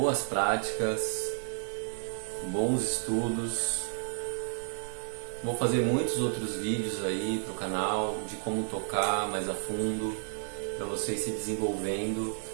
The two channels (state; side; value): silent; left; digital silence